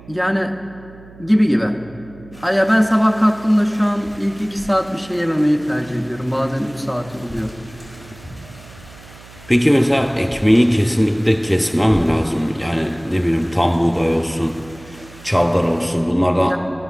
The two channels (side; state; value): right; noise; hum, 21 dB below the sound